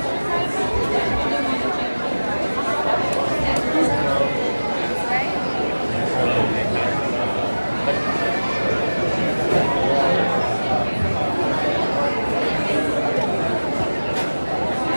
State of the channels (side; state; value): both; inverted; correlation -1.00